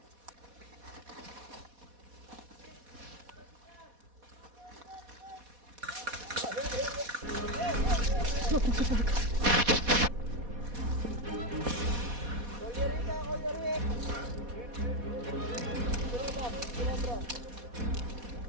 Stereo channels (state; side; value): late; left; 4.1 ms